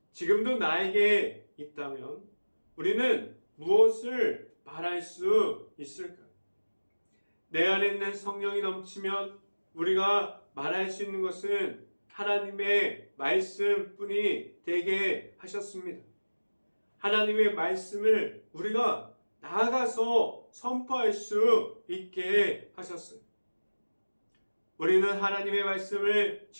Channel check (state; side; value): inverted; both; correlation -1.00